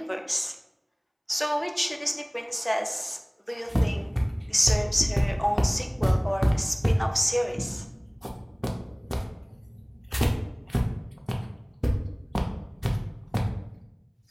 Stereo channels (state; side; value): identical; both; correlation 1.00